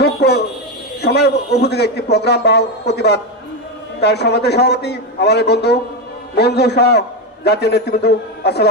সময় উপযোগী একটি প্রোগ্রাম বা প্রতিবাদ, তার সমাজের সভাপতি আমাদের বন্ধু মঞ্জু সহ জাতীয় নেতৃবৃন্দ,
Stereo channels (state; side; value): normal; both; correlation 0.10